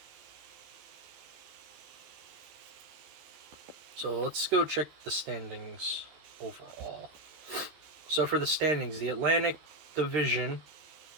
So let's go check the standings overall. So for the standings, the Atlantic Division,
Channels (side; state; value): left; late; 13 ms